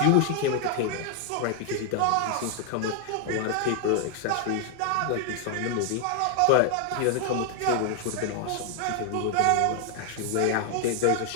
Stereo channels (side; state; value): both; different; correlation 0.00